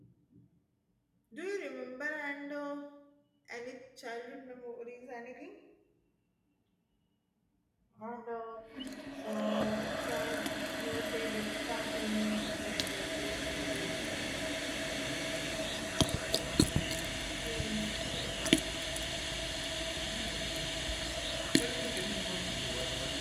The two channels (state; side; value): identical; both; correlation 1.00